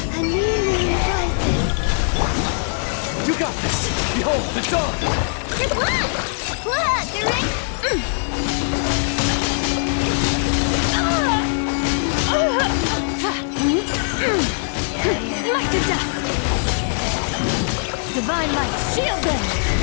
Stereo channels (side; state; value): right; silent; 65 dB below the other